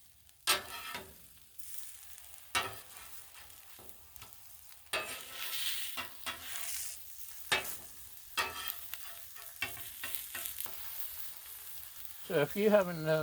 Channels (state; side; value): identical; both; correlation 1.00